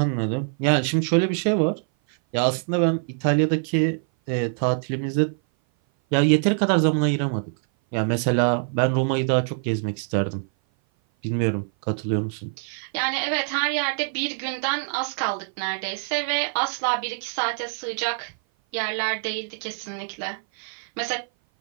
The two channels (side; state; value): left; silent; 57 dB below the other